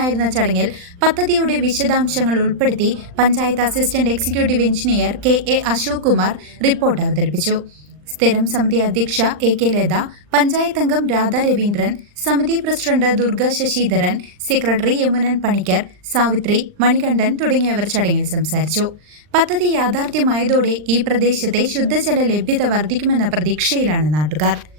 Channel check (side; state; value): left; late; 39 ms